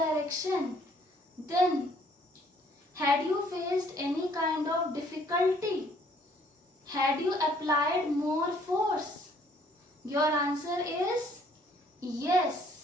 then had you faced any kind of difficulty? Had you applied more force? Your answer is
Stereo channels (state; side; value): normal; both; correlation 0.62